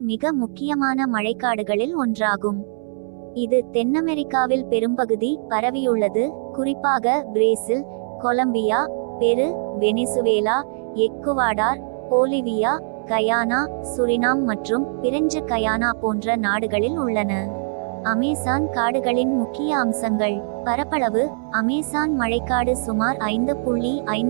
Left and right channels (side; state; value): left; silent; 64 dB below the other